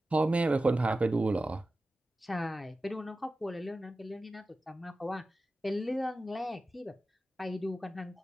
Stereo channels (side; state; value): both; normal; correlation 0.94